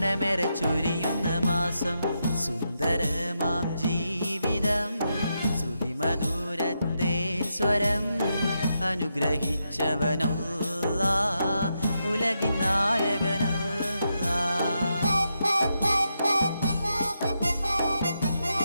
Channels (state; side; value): inverted; both; correlation -0.84